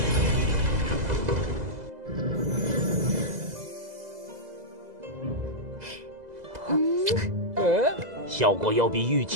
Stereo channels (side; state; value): left; late; 2.0 ms